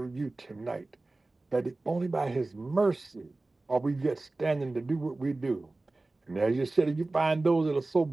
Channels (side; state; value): left; quieter; 3.1 dB